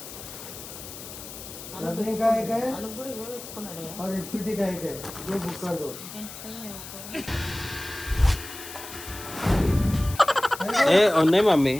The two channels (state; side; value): noise; left; hiss, 13 dB below the sound